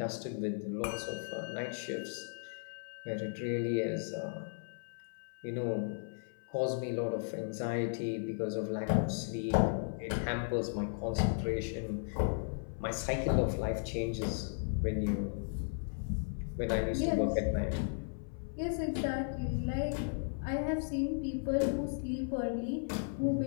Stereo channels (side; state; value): right; silent; 54 dB below the other